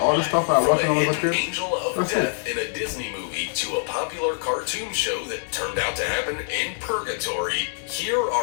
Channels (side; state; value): right; silent; digital silence